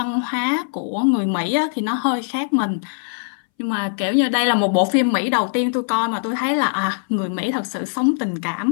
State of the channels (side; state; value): right; silent; 64 dB below the other